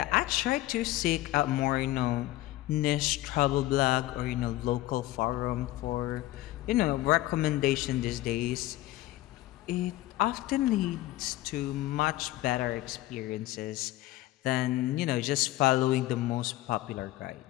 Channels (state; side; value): quieter; right; 16.7 dB